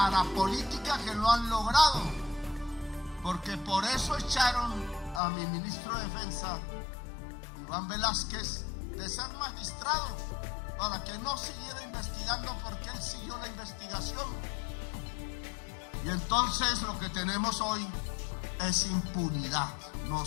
que lo han logrado, porque por eso echaron a mi ministro de Defensa, Iván Velázquez, de ser magistrado, para que no siguiera investigando, porque él siguió la investigación. Y entonces lo que tenemos hoy es impunidad.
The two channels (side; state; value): right; drops out; at 5.2 s